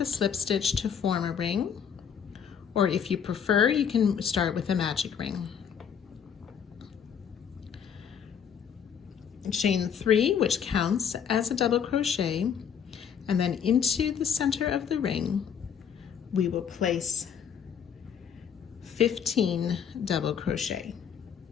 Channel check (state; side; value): quieter; right; 7.8 dB